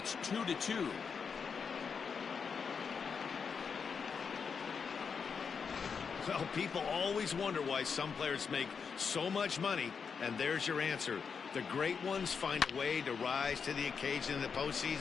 2-2. Well, people always wonder why some players make so much money, and there's your answer. The great ones find a way to rise to the occasion in the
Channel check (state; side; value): quieter; right; 6.0 dB